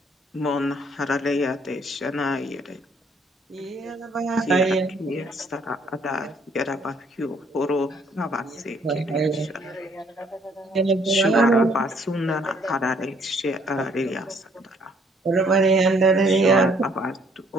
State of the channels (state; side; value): normal; both; correlation 0.64